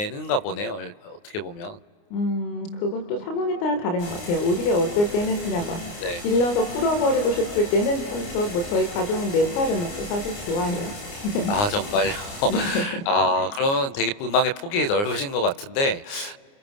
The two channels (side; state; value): right; late; 29 ms